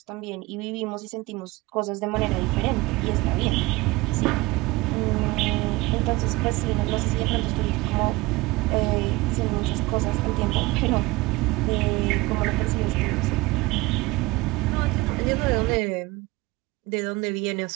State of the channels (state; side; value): quieter; left; 21.4 dB